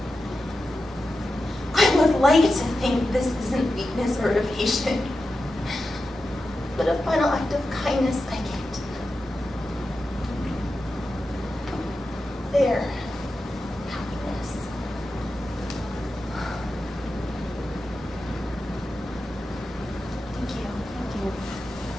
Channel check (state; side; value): normal; both; correlation 0.91